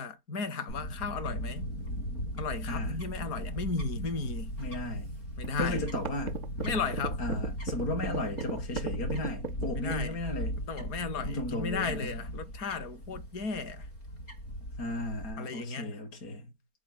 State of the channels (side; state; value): right; late; 4.3 ms